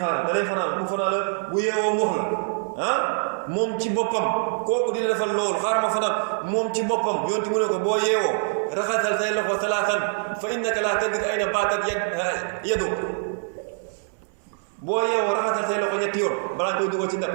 da lay fanaan bu fanaan la bu yeewoo mu wax la moom ci boppam kooku di la defal loolu xaar ma fanaan moom ci boppam yonti mu ne ko boo yeewoo raxasal say loxo salaasan fa innaka laa tadri ayna baatat yadu boo yeewoo raxasal say loxo ñetti yoon balaa nga koy dugal ci ndax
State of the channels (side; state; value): left; silent; 62 dB below the other